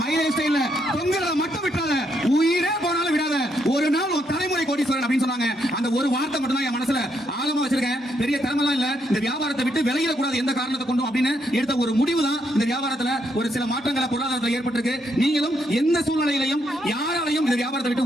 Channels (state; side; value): normal; both; correlation 0.76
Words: லைஃப்ஸ்டைல்ல தொங்குறத மட்டும் விட்டாத, உயிரே போனாலும் விடாத. ஒரு நாள் ஒரு தலைமுறை கோடீஸ்வரன் அப்படின்னு சொன்னாங்க. அந்த ஒரு வார்த்தை மட்டும் தான் என் மனசுல ஆழமா வச்சிருக்கேன். பெரிய திறமெல்லாம் இல்ல. இந்த வியாபாரத்தை விட்டு விலகிட கூடாது எந்த காரணத்தை கொண்டும் அப்படின்னு எடுத்த ஒரு முடிவு தான் இந்த வியாபாரத்துல ஒரு சில மாற்றங்களை பொருளாதாரத்தில் ஏற்பட்டிருக்கு. நீங்களும் எந்த சூழ்நிலையிலையும் யாராலையும் இந்த வியாபாரத்தை